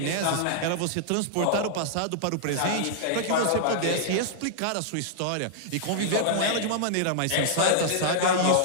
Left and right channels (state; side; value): different; both; correlation -0.01